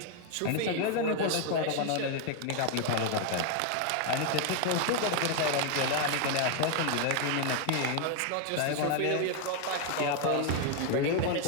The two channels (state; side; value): different; both; correlation 0.01